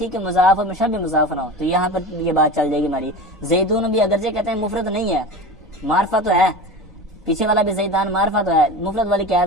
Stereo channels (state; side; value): normal; both; correlation 0.30